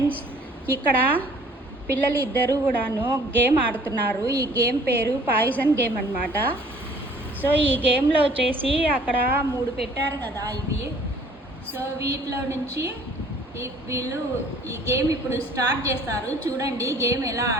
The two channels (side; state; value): both; normal; correlation 0.55